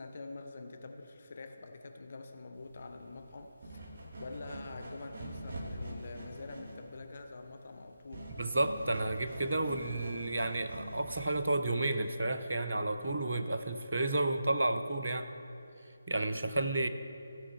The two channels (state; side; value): inverted; both; correlation -0.86